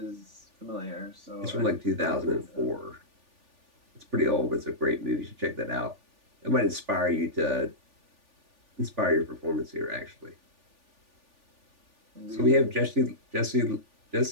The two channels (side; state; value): left; late; 3.4 ms